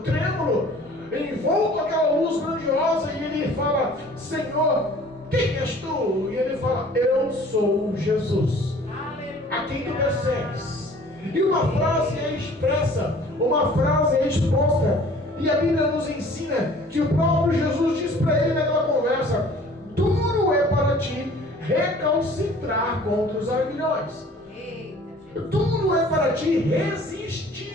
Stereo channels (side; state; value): both; normal; correlation 0.50